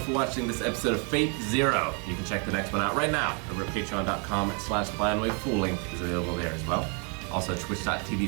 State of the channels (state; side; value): quieter; left; 36.6 dB